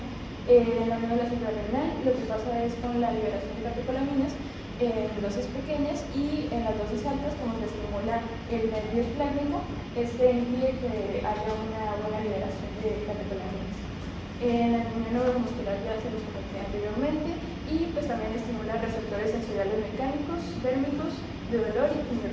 En la médula suprarrenal lo que pasa es con la liberación de catecolaminas en dosis pequeñas y en las dosis altas, como se estimula el nervio esplénico, impide que haya una buena liberación de catecolaminas. En la neuromuscular ya se los comenté anteriormente y pues también estimula receptores sensoriales mecánicos, térmicos, de dolor y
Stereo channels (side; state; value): both; identical; correlation 1.00